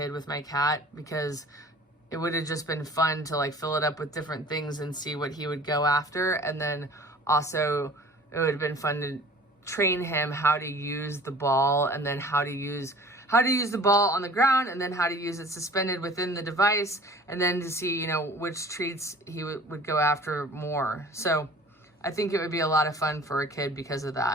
with my cat because it would have just been fun to fill it up with different things and see what he would go after. And then also it would have been fun to train him how to use the ball and then how to use the ball on the ground and then how to use it suspended within the device and then to see, which treats he would go after more. So I think it would be a lot of fun for a kid because of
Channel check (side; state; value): both; normal; correlation 0.47